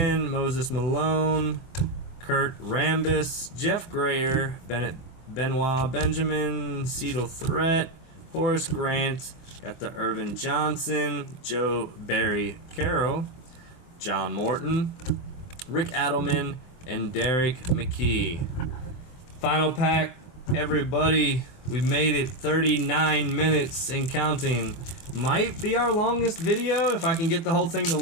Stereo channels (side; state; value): right; late; 24 ms